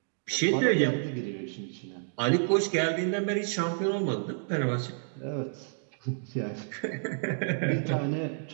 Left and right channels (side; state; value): left; silent; digital silence